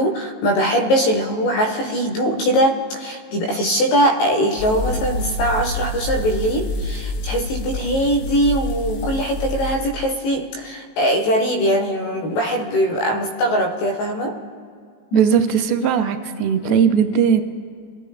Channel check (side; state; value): right; late; 18 ms